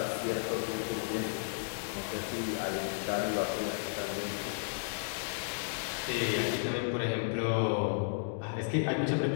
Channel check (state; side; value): silent; right; digital silence